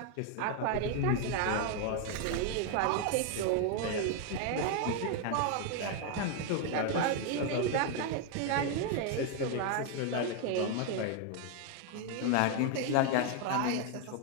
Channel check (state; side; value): different; both; correlation 0.01